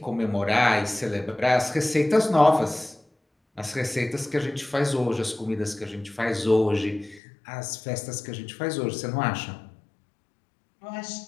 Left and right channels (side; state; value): right; drops out; at 7.2 s